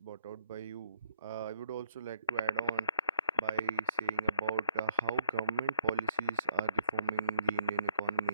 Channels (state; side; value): inverted; both; correlation -0.67